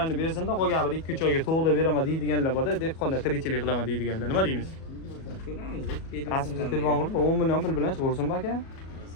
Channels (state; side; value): late; right; 37 ms